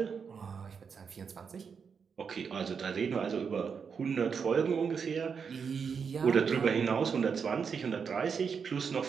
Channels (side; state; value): left; quieter; 6.2 dB